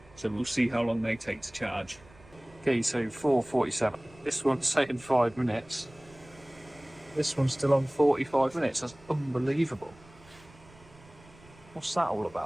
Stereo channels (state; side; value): noise; right; rumble, 24 dB below the sound